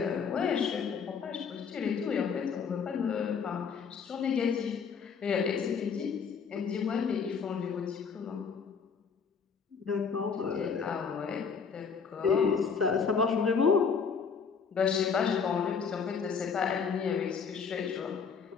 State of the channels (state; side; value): quieter; right; 6.1 dB